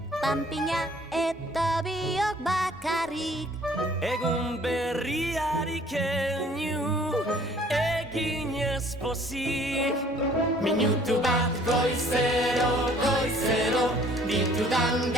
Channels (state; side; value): normal; both; correlation 0.56